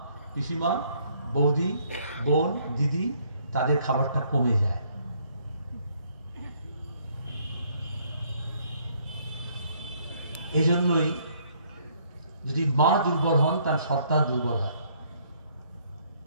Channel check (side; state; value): both; inverted; correlation -0.65